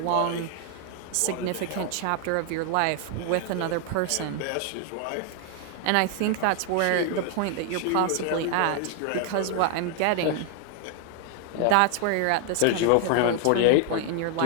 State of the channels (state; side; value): different; both; correlation 0.00